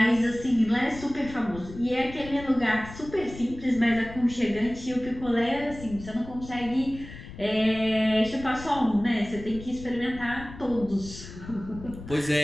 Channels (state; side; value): noise; left; rumble, 14 dB below the sound